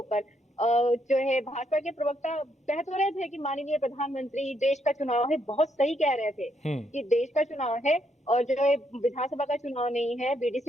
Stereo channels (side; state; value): both; normal; correlation 0.75